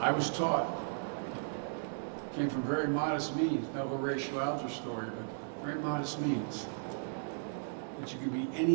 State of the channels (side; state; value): left; silent; digital silence